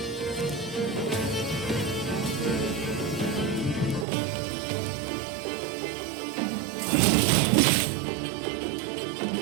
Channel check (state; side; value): drops out; left; at 4.0 s